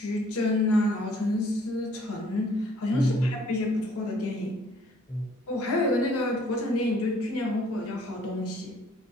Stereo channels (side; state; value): both; normal; correlation 0.60